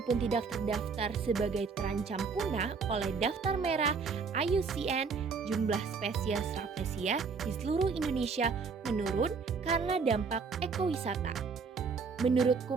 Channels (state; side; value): quieter; left; 5.2 dB